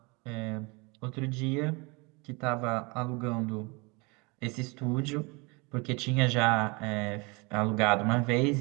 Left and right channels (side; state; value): left; quieter; 28.1 dB